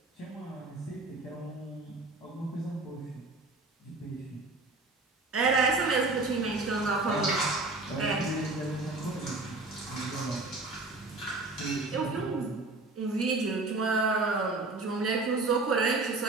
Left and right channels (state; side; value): quieter; left; 3.3 dB